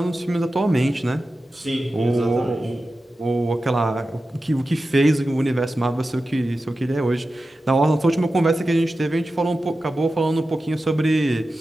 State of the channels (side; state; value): both; normal; correlation 0.93